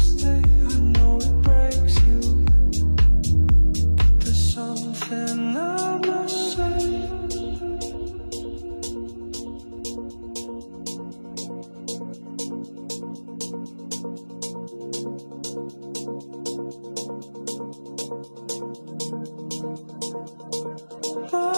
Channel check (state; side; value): inverted; both; correlation -1.00